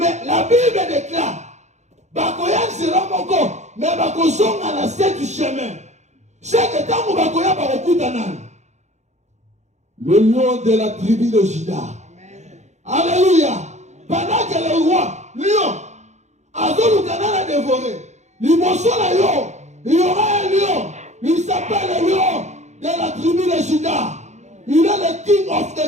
la Bible déclare, Bakoyan sera mon corps, mais Bakosong a la 7 chemins. Chaque temps où Bakoyan va recouter le lion de la tribu de Juda. Alléluia. Pendant que le roi, lion, Azolu Kanana dévoré, il y aura un lion, il s'appelle le lion de la tribu de Juda. Il est le king of the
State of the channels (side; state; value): left; late; 0.33 ms